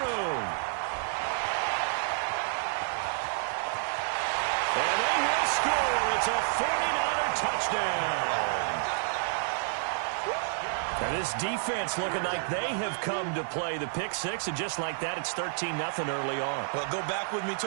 And they will score. It's a 49er touchdown. And this defense looking like they have come to play the pick six, and just like that, it's 13-0 early on. Well, go back with me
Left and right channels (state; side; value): silent; left; 58 dB below the other